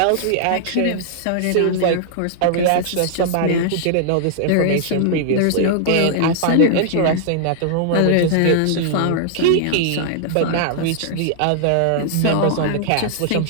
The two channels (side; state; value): both; different; correlation -0.01